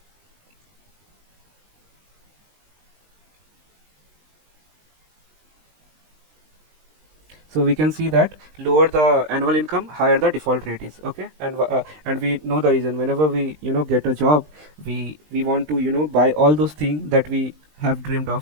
So we can see that lower the annual income, higher the default rate is. Okay, and we know the reason. Whenever we, you know, get a job, we want to, you know, buy all those things that we have dreamed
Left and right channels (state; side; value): late; left; 20 ms